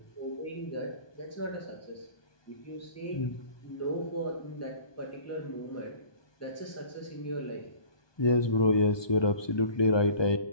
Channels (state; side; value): late; right; 1.2 ms